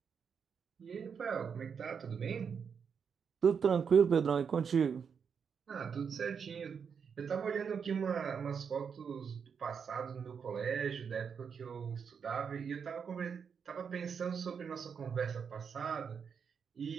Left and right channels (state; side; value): quieter; left; 6.6 dB